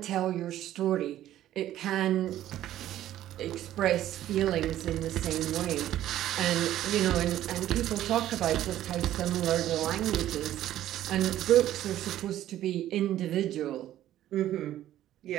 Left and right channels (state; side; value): quieter; left; 12.9 dB